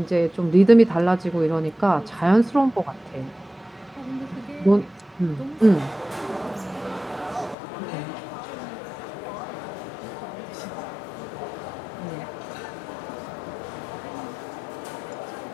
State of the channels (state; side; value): drops out; right; at 7.6 s